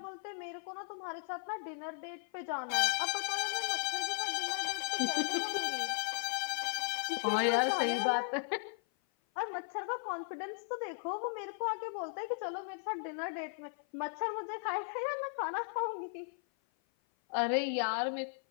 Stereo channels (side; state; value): right; silent; 53 dB below the other